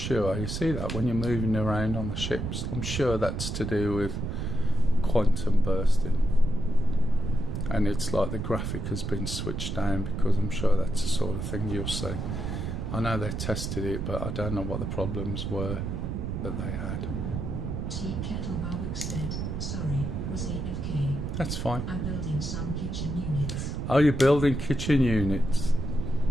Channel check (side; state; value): right; noise; rumble, 3 dB below the sound